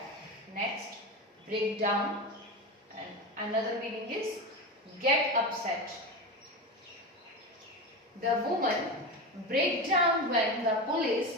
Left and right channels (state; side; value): normal; both; correlation 0.21